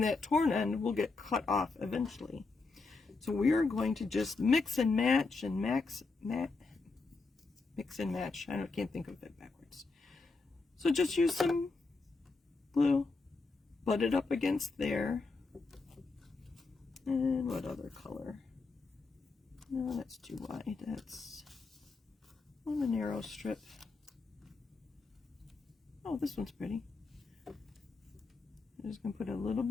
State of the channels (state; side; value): quieter; right; 3.9 dB